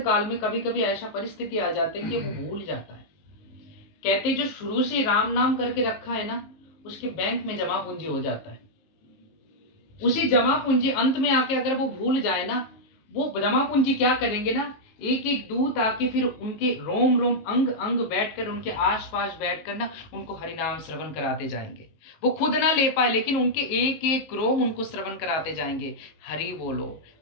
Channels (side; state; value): right; late; 19 ms